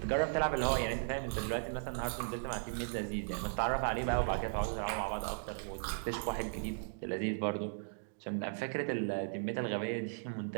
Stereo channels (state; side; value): silent; left; digital silence